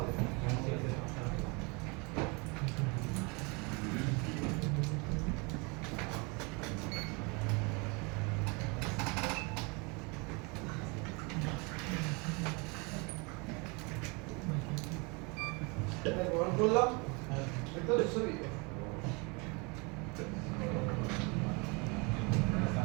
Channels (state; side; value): quieter; left; 29.8 dB